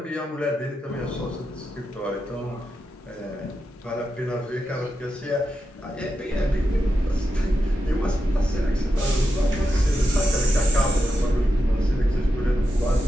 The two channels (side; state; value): both; normal; correlation 0.88